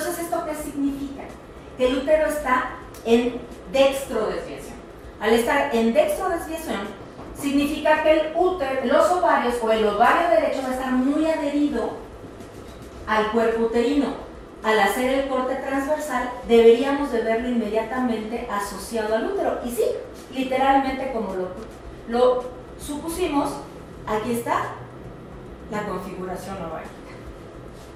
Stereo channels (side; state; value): both; identical; correlation 1.00